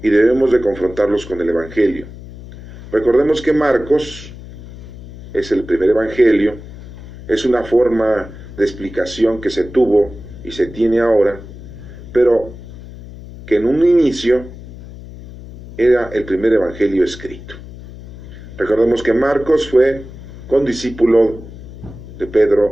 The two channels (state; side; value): noise; left; hum, 15 dB below the sound